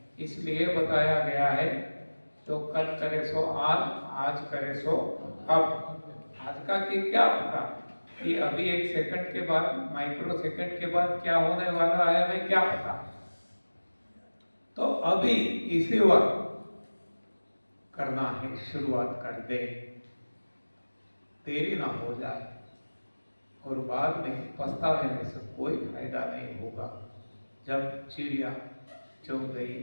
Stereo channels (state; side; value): inverted; both; correlation -1.00